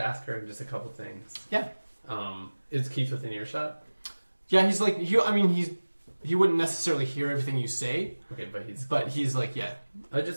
ask her just a couple things. Yeah. Is Keith within earshot? Yeah, he's like he wouldn't necessarily hear everything you say, Okay, but he's like, yeah. I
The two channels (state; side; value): inverted; both; correlation -1.00